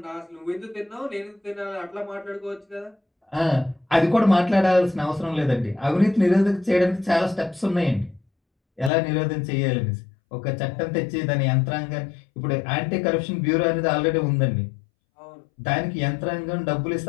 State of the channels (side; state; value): right; drops out; at 8.9 s